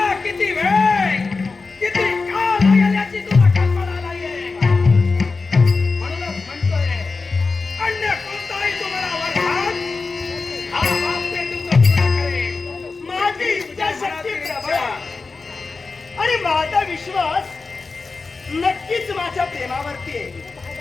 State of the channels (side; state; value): right; quieter; 4.1 dB